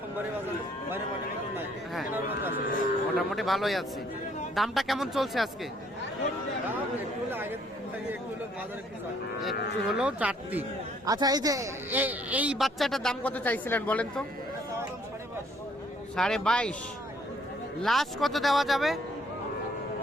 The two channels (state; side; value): normal; both; correlation 0.64